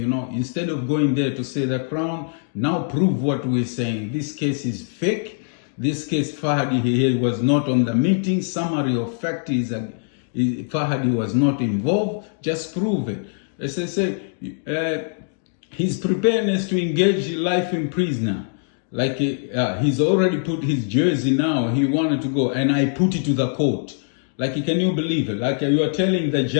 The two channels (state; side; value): silent; right; digital silence